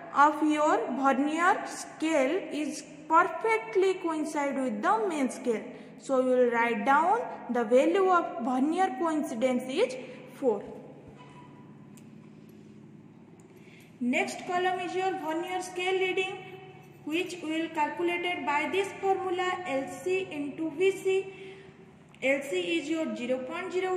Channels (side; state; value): both; identical; correlation 1.00